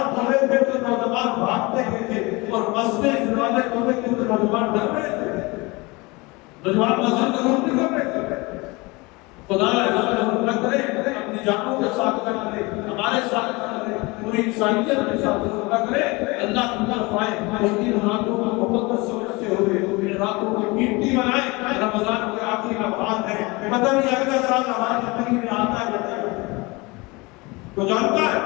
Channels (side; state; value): right; quieter; 24.9 dB